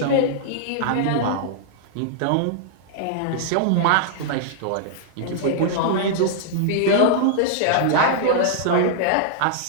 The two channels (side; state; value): both; different; correlation -0.01